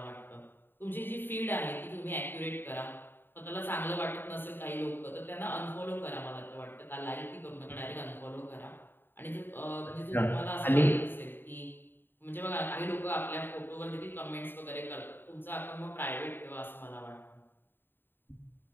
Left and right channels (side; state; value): right; late; 0.096 ms